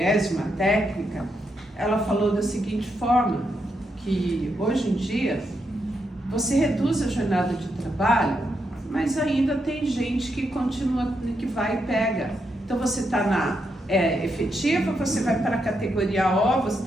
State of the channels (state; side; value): normal; both; correlation 0.82